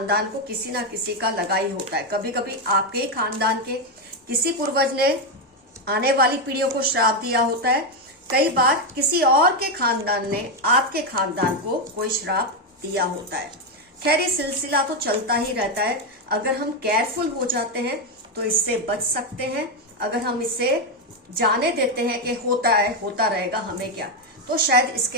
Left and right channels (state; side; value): normal; both; correlation 0.06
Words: को किसी ना किसी का लगा ही होता है। कभी कभी आपके ही खानदान के किसी पूर्वज ने आने वाली पीढ़ियों को श्राप दिया होता है, कई बार किसी और के खानदान ने आपके खानदान को कोई श्राप दिया होता है। खैर, ये सिलसिला तो चलता ही रहता है। अगर हम केयरफुल हो जाते हैं तो इससे बच सकते हैं। अगर हम इसे जाने देते हैं कि होता है, होता रहेगा, हमें क्या, तो शायद